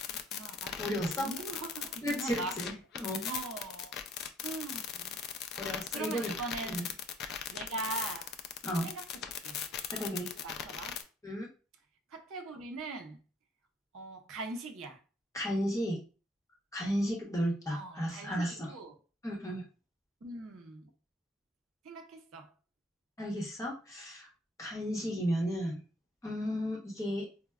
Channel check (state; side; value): normal; both; correlation 0.64